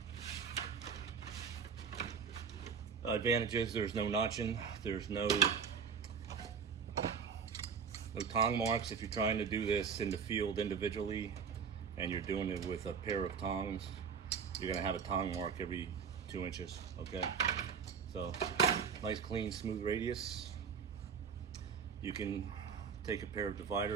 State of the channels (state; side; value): quieter; left; 6.4 dB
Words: Advantage is there's no notching, there's no tong marks. If you're trying to do this in the field individually and you're doing it with a pair of tongs, you're gonna have a tong mark every 2 inches, okay? So nice, clean, smooth radius. You can take a pair of